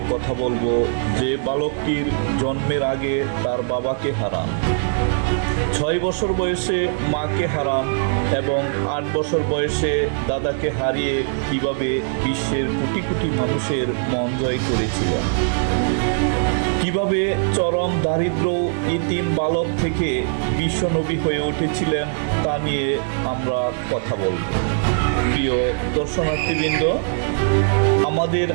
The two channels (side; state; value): left; silent; digital silence